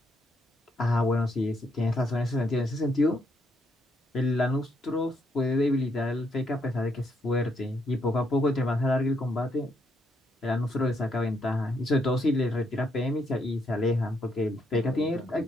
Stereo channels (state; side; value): normal; both; correlation 0.75